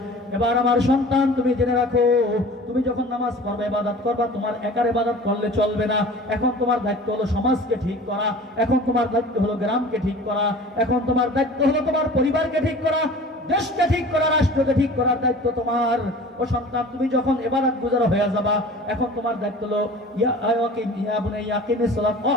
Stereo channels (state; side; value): normal; both; correlation 0.42